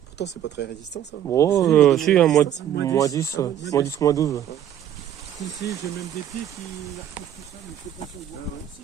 Pourtant, c'est pas très résistant, ça. Bon, Si, si, un mois moins 10. 10, Ah, moins 10, moins 12. Ici, j'ai même des pieds qui repoussent tout seuls, mais je sais pas si on voit pas ici.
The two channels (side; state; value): left; quieter; 10.4 dB